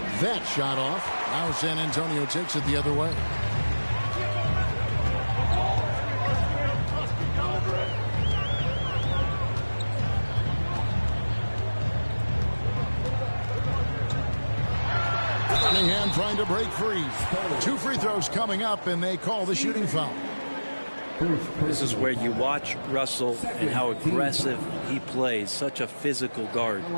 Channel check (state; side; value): inverted; both; correlation -1.00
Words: That shot off. Now San Antonio takes it the other way. Cunningham trying to break free. 2 free throws coming up, and they call the shooting foul. This is where you watch Russell and how aggressive he plays. Such a physical guard.